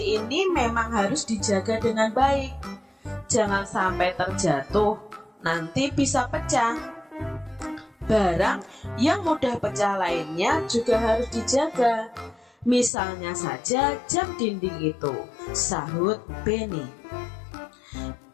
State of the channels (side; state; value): right; drops out; at 12.9 s